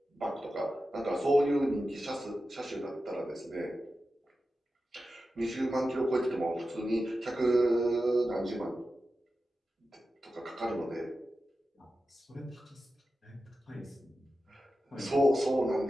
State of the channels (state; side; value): normal; both; correlation 0.92